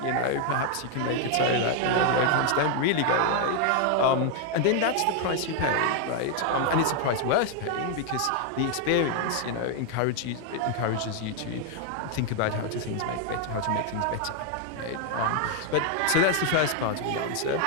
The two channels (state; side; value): different; both; correlation 0.00